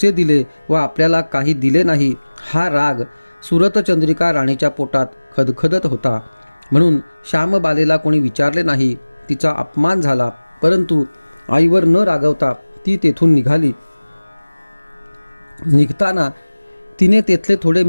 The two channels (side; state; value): both; inverted; correlation -1.00